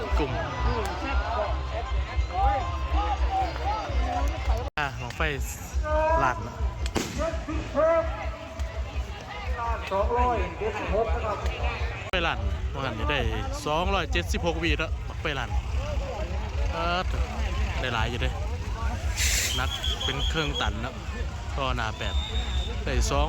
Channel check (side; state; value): both; identical; correlation 1.00